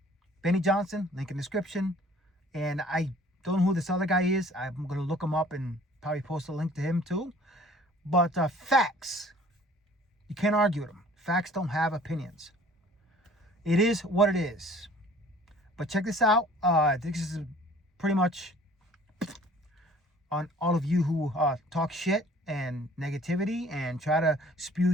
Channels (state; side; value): normal; both; correlation 0.52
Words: Johnson, link in description. And I don't know who this other guy is. I'm going to look him up and probably post a link to him too. But facts, you can't argue with them. Facts don't have opinions. It is what it is. But check this out. This is pretty much on all of you who talk shit and negativity and try to spew